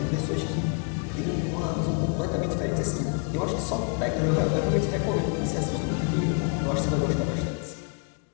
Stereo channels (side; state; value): right; quieter; 39.3 dB